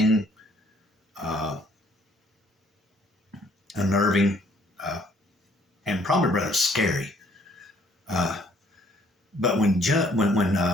unnerving, and probably rather scary. But when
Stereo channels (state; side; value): normal; both; correlation 0.62